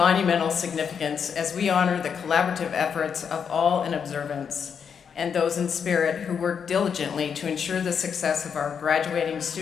significance as we honor the collaborative efforts of all in observance and those in spirit who work diligently to ensure the success of our graduating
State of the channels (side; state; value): right; quieter; 7.0 dB